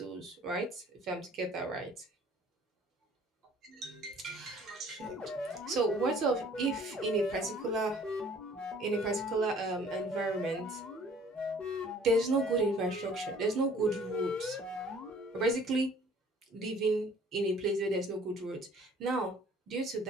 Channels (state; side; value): normal; both; correlation 0.54